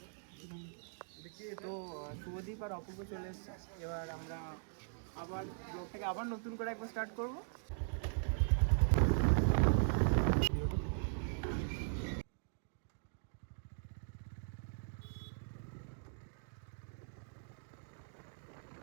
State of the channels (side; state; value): left; silent; digital silence